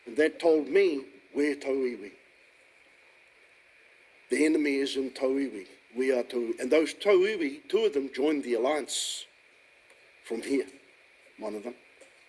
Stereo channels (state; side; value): identical; both; correlation 1.00